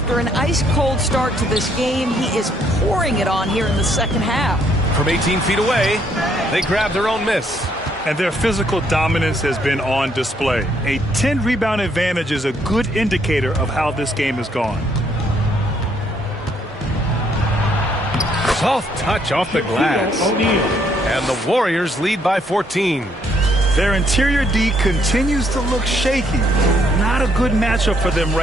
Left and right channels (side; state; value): both; normal; correlation 0.70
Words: an ice-cold start to this game, he is pouring it on here in the second half. From 18 feet away, they grab their own miss. And their physical dominance has been on display. A 10-rebound advantage is a good indicator of how this game has gone. Soft touch off the glass. And the Warriors lead by 14. Their interior D continues to look shaky. Not a good matchup for them